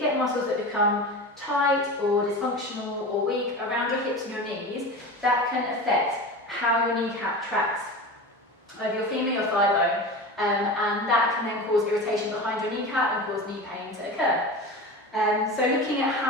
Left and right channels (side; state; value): both; normal; correlation 0.30